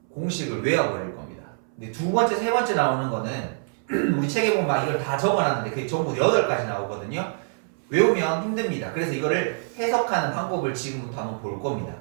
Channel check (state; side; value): silent; left; 62 dB below the other